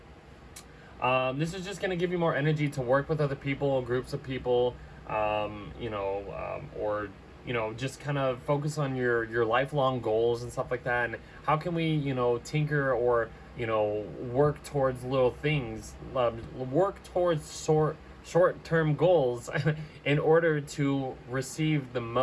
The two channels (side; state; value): both; identical; correlation 1.00